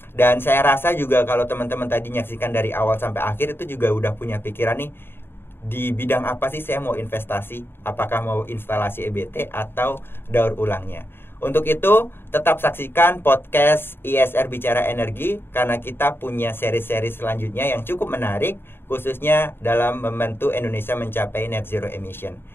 Dan saya rasa juga kalau teman-teman tadi menyaksikan dari awal sampai akhir itu juga udah punya pikiran nih, di bidang apa sih saya mau investasi, apakah mau instalasi EBT atau daur ulangnya. Untuk itu tetap saksikan podcast ISR Bicara Energi, karena kita punya seri-seri selanjutnya yang cukup menarik, khususnya dalam membantu Indonesia mencapai net zero emission.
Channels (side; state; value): right; late; 0.11 ms